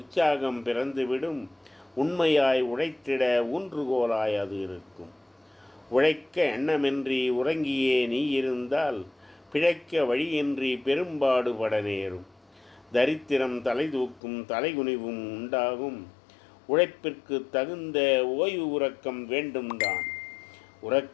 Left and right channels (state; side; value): drops out; right; at 14.2 s